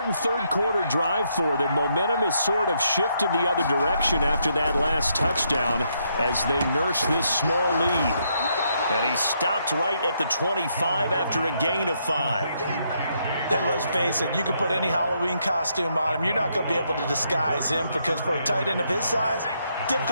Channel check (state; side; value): inverted; both; correlation -0.76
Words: 3rd quarter drive for them. Momentum has sort of shifted the other direction after that last touchdown as they nurse this small lead. And he stopped right at the 25 after a gain of 5. And let's face it, you can put any Halloween costume on him. You're not going to be able to disguise him because for a tight end of his size,